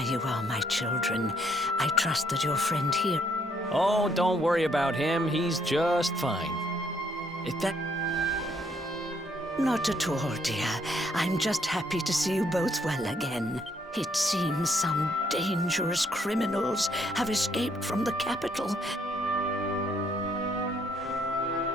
you are, my children. I trust that your friend here... Oh, don't worry about him. He's just fine. If that... Not at all, dear. I'm just happy to see you both well again. It seems some dangerous criminals have escaped from the capital.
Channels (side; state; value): both; normal; correlation 0.69